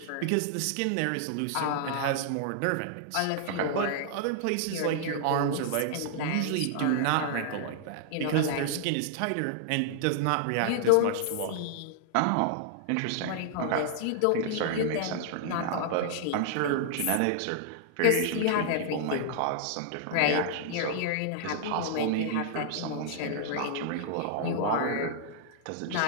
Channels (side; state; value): both; different; correlation -0.01